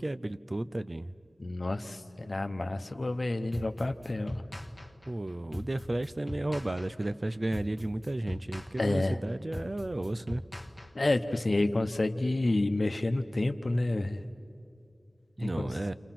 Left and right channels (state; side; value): normal; both; correlation 0.98